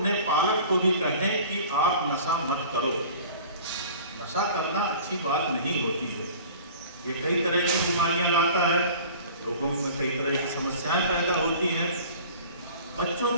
पालक को भी कहें कि आप नशा मत करो। नशा करना अच्छी बात नहीं होती है, ये कई तरह की बीमारियां लाता है, लोगों में कई तरह की समस्याएं पैदा होती हैं। बच्चों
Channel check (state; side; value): inverted; both; correlation -0.44